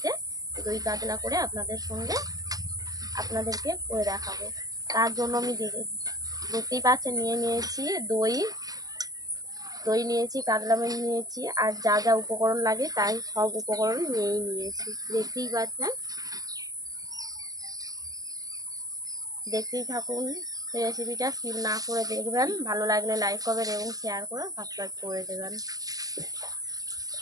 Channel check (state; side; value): late; left; 0.18 ms